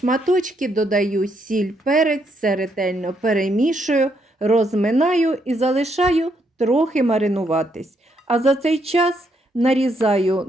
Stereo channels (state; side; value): normal; both; correlation 0.75